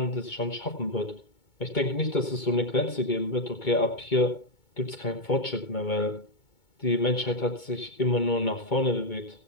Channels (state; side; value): late; right; 2.2 ms